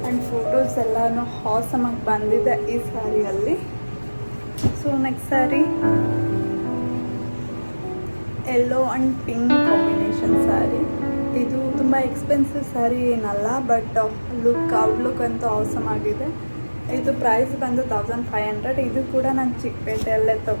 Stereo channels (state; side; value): inverted; both; correlation -1.00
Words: ಆ್ಯಂಡ್ ಫೋಟೋಸ್ ಎಲ್ಲನೂ ಹಾಸಮಾಗಿ ಬಂದಿದೆ ಈ ಸ್ಯಾರಿಯಲ್ಲಿ. So next sari yellow and pink combination sari. ಇದು ತುಂಬ ಎಕ್ಸ್ಪೆನ್ಸಿವ್ ಸ್ಯಾರಿ ಏನಲ್ಲ, ಬಟ್ ಔಟ್ಲುಕ್ ಅಂತೂ ಆಸಮ್ ಆಗಿದೆ. ಇದು ಪ್ರೈಸ್ ಬಂದು 1500. ಇದು ಕೂಡ ನಾನು ಚಿಕ್ಕಪೇಟೆಯಲ್ಲೇ